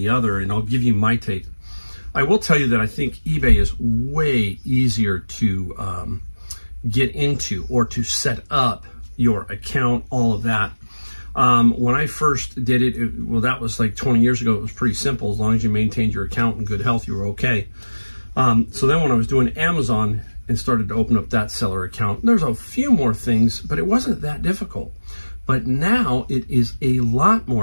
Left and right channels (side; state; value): both; inverted; correlation -1.00